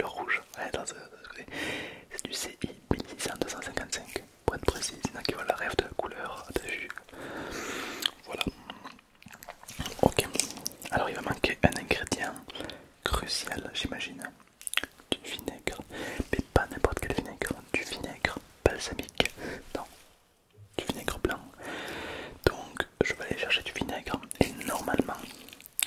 rouge. Ouais, c'est du CI 1600-255 pour être précis. Il y en a qui voient la rêve de la couleur, t'as vu. Voilà. Ok. Alors, il va manquer un ingrédient crucial, j'imagine. Du vinaigre. Mais pas n'importe quel vinaigre. Du vinaigre balsamique. Non, du vinaigre blanc. Donc, je vais aller chercher du vinaigre. Et normalement,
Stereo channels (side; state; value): both; identical; correlation 1.00